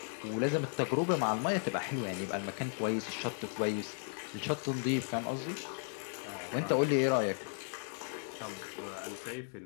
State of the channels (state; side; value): silent; right; 54 dB below the other